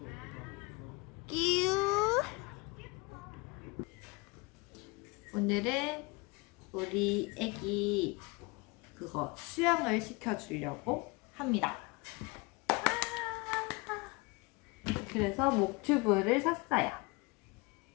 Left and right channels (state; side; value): quieter; right; 26.6 dB